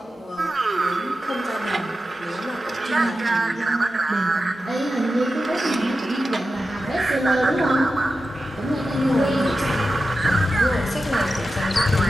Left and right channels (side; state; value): both; normal; correlation 0.91